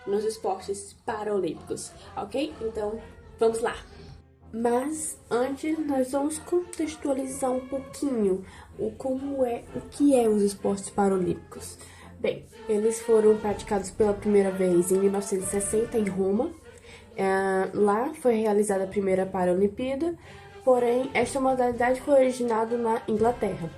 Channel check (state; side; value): identical; both; correlation 1.00